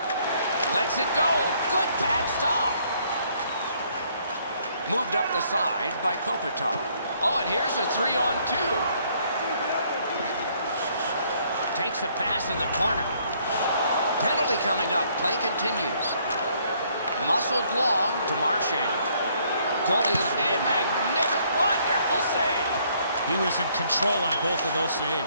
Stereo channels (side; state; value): both; inverted; correlation -0.66